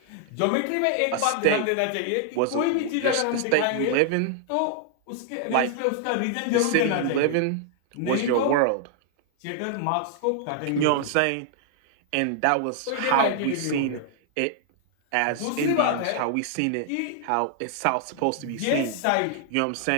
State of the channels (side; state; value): both; different; correlation -0.01